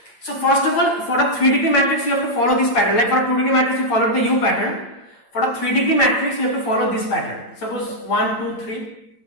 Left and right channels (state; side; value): late; right; 9.2 ms